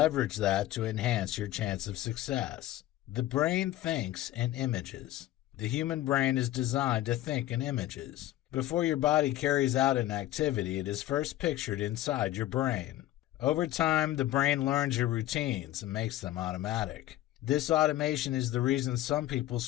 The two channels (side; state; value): right; quieter; 14.6 dB